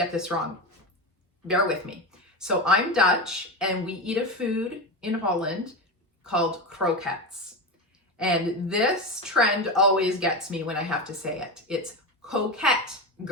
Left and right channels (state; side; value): normal; both; correlation 0.19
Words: this wrong. Bear with me. So I'm Dutch and we eat a food in Holland called croquettes. And this trend always gets me when I have to say it. It's Coquette